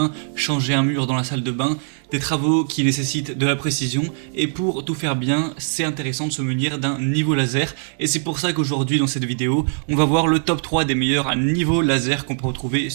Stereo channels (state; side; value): silent; left; 65 dB below the other